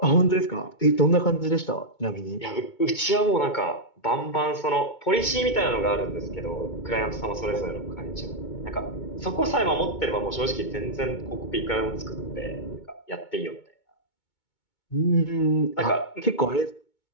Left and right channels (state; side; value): late; right; 2.2 ms